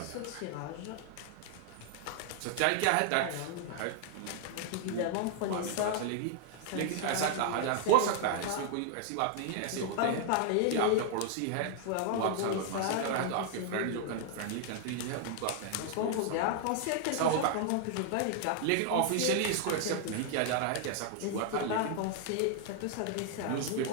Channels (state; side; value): different; both; correlation 0.00